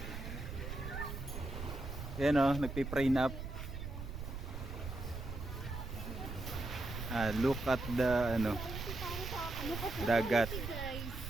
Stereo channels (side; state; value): right; noise; rumble, 7 dB below the sound